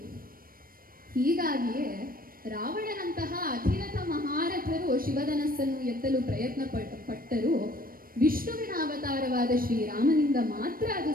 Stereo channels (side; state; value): left; late; 0.41 ms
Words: ಹೀಗಾಗಿಯೇ ರಾವಣನಂತಹ ಅಧಿರಥ ಮಹಾರಥರು ಶಿವಧನಸ್ಸನ್ನು ಎತ್ತಲು ಪ್ರಯತ್ನ ಪಟ್ಟರು. ವಿಷ್ಣುವಿನ ಅವತಾರವಾದ ಶ್ರೀರಾಮನಿಂದ ಮಾತ್ರ ಅದು